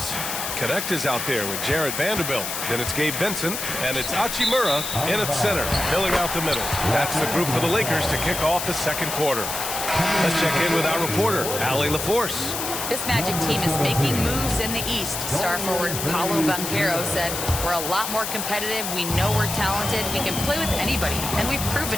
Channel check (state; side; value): noise; left; hiss, 4 dB below the sound